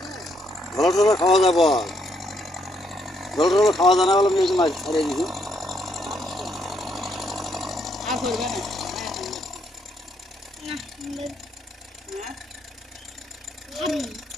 ঢলা ঠোঁট খাওয়া যায় বল, ঢলা ঠোঁট খাওয়া যায় না বলে আমি মাছ ছাড়িয়ে দিছি।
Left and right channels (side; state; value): both; normal; correlation 0.74